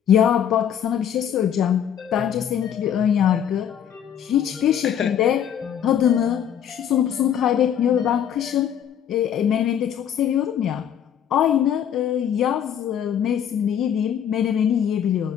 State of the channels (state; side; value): quieter; right; 9.2 dB